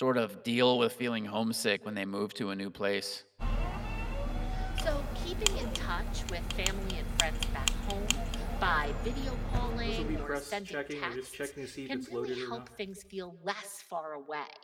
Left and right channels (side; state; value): both; identical; correlation 1.00